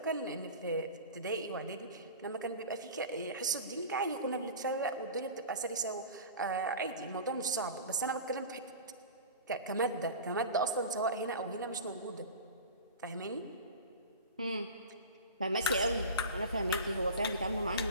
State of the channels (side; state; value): both; inverted; correlation -0.35